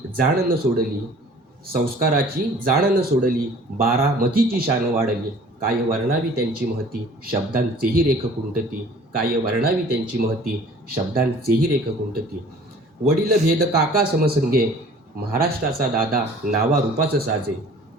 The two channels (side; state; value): both; normal; correlation 0.50